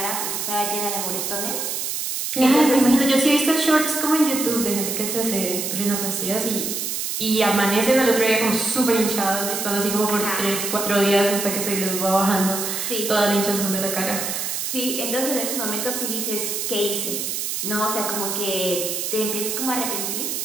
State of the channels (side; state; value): right; noise; hiss, 2 dB below the sound